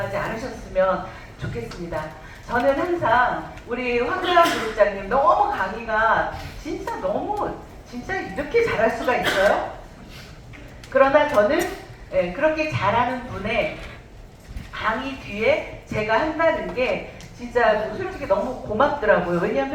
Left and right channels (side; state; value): both; identical; correlation 1.00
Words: 않으셨으면 좋겠습니다. 저는 항상 우리 황대환 그룹장님 너무 강의가 진짜 이렇게 잘할 수가 있어요? 그러나 저는 그렇게 잘하는 분의 강의 뒤에 제가 한다는 게 진짜 솔직히 너무 고맙더라고요.